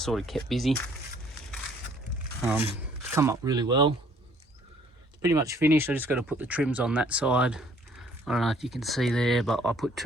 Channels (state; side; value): normal; both; correlation 0.60